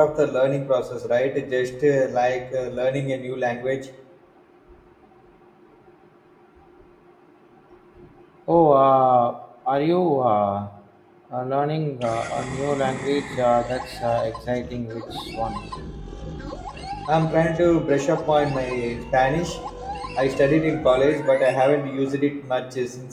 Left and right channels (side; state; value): both; identical; correlation 1.00